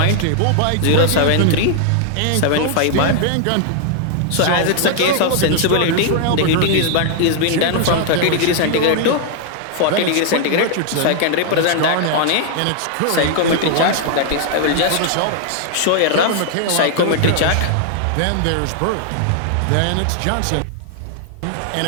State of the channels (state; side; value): different; both; correlation 0.00